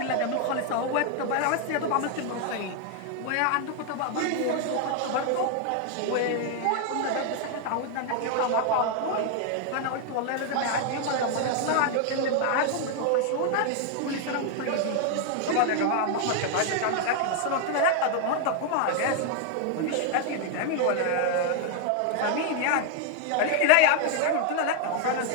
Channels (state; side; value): different; both; correlation 0.00